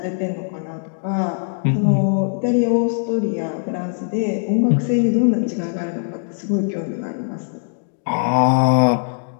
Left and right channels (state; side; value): silent; right; digital silence